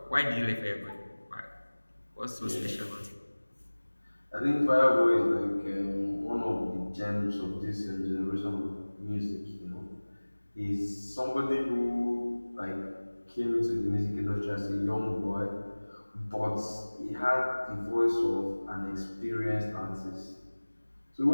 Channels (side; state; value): both; inverted; correlation -1.00